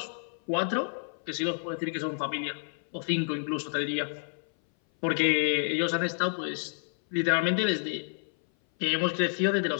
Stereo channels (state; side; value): silent; right; 57 dB below the other